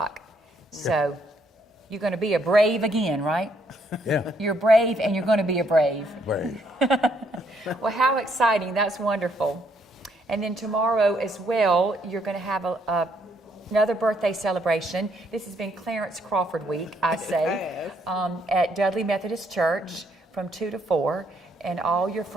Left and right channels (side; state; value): both; normal; correlation 0.71